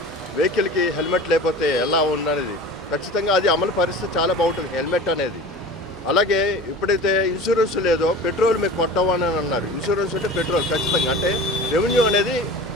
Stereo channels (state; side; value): normal; both; correlation 0.37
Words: వెహికల్కి హెల్మెట్ లేకపోతే ఎలా ఉన్నది. ఖచ్చితంగా అది అమలు పరిస్థితి చాలా బాగుంటుంది హెల్మెట్ అనేది. అలాగే ఎప్పుడైతే ఇన్సూరెన్స్ లేదో పెట్రోల్ మీకు కొట్టవని అన్నారు. ఇన్సూరెన్స్ అంటే పెట్రోల్ ఖచ్చితంగా, అంటే రెవెన్యూ అనేది